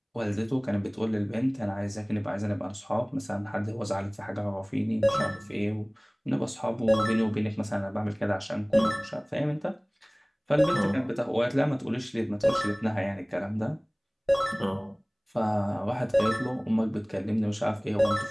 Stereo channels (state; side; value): identical; both; correlation 1.00